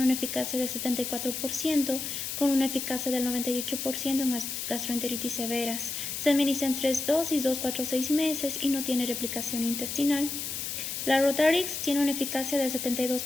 una eficacia del 74% con una eficacia del 98% en gastroenteritis severas. Se administra en 3 dosis, 2, 4, 6 meses y no tiene replicación intestinal. La Rotarix tiene una eficacia del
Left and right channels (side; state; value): left; noise; hiss, 4 dB below the sound